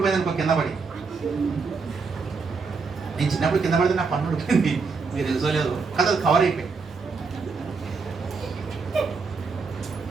అనుకో కింద పడి. నేను చిన్నప్పుడు కింద పడితే నా పన్ను ఊడిపోయింది, మీరు తెలుసుకోలేదు కదా, అది కవర్ అయిపోయింది.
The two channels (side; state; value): left; quieter; 4.8 dB